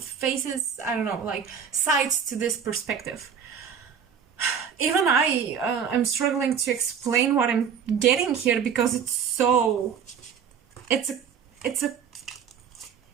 I don't know, like sides to this perspective. Even I'm struggling to explain what I'm getting here, because it's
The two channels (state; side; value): quieter; left; 7.3 dB